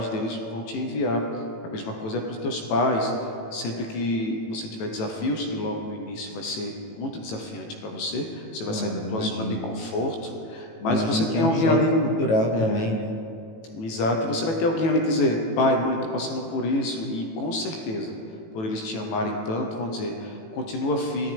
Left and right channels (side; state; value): right; late; 18 ms